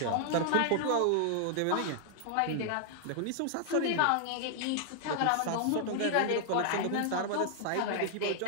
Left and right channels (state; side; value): different; both; correlation -0.01